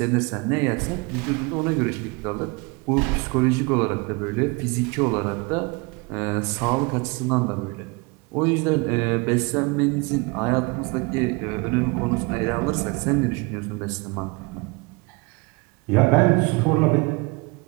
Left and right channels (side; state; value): left; quieter; 27.8 dB